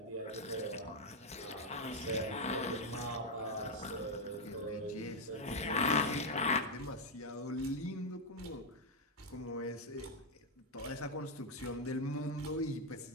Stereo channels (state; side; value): normal; both; correlation 0.01